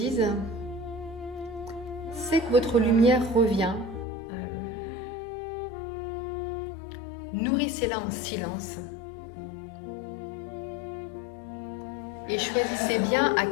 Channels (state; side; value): drops out; right; at 4.0 s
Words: sentez que votre lumière revient. Nourrissez-la en silence. Et choisissez bien à